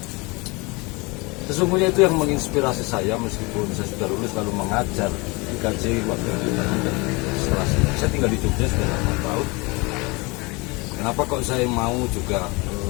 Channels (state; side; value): quieter; right; 26.4 dB